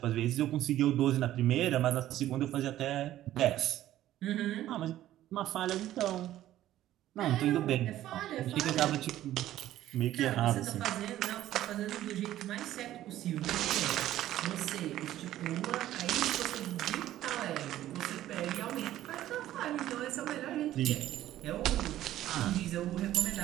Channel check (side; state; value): left; quieter; 13.5 dB